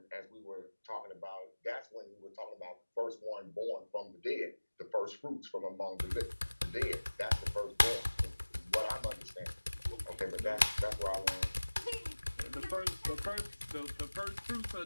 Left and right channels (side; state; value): both; inverted; correlation -1.00